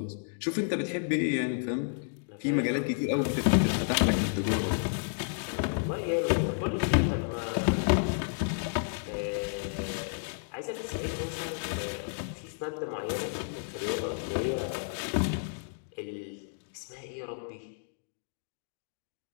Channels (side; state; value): right; silent; digital silence